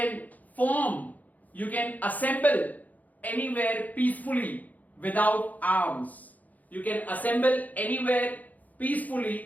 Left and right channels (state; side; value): late; right; 0.079 ms